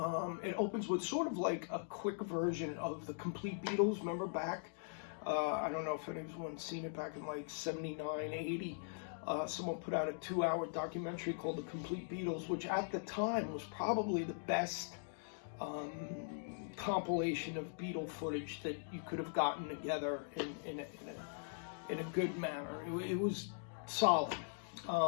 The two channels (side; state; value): right; silent; digital silence